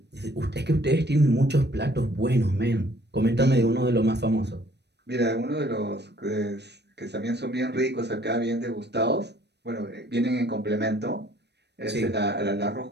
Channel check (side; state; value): left; late; 0.49 ms